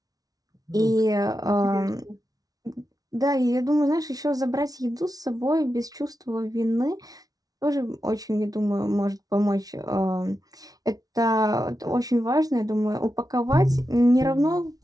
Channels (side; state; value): left; late; 0.18 ms